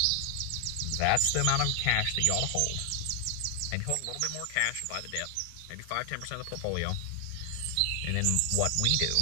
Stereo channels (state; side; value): different; both; correlation 0.00